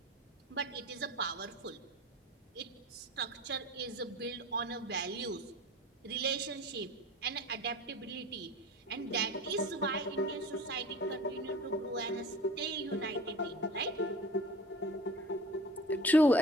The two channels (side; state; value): both; normal; correlation 0.40